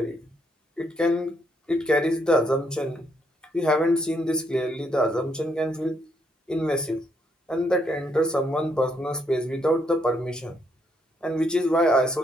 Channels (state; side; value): normal; both; correlation 0.74